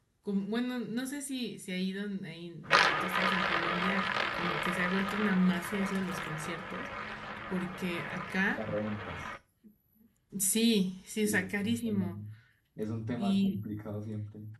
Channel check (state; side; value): identical; both; correlation 1.00